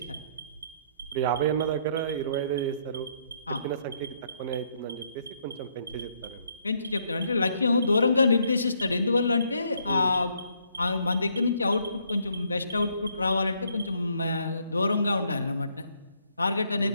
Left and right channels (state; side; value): inverted; both; correlation -0.70